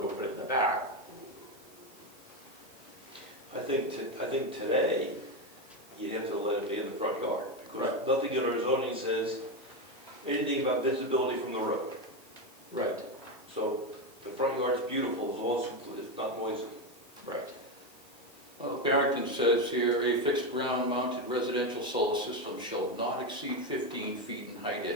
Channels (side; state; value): left; noise; hiss, 25 dB below the sound